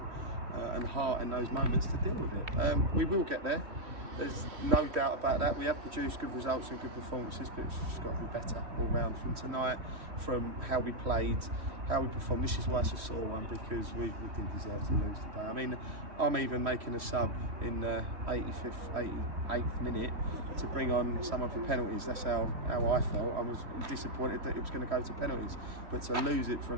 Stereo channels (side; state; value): left; late; 3.1 ms